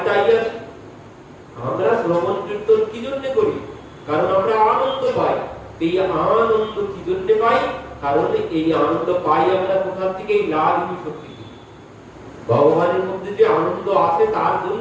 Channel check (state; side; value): identical; both; correlation 1.00